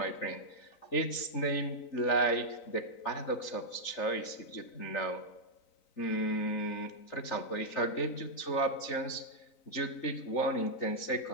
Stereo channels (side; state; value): right; late; 3.9 ms